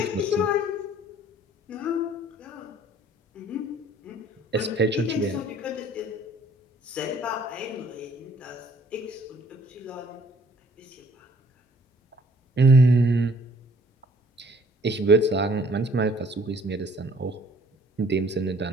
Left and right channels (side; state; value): both; normal; correlation 0.58